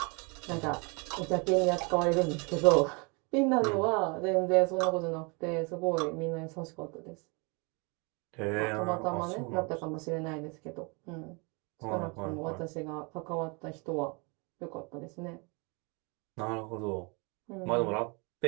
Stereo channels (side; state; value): left; quieter; 31.2 dB